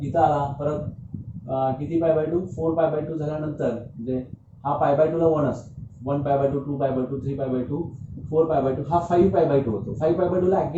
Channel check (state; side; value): identical; both; correlation 1.00